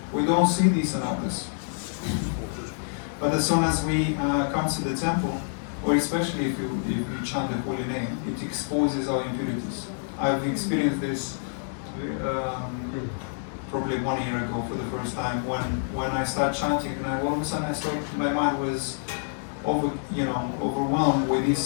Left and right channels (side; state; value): right; silent; 60 dB below the other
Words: we don't see these in others. But as soon as we come to the temple, or especially if you chant the holy name, it exposes our impurities. I've experienced this probably 1 year ago for the first time when I started chanting, and all of a sudden my mind was overwhelmed with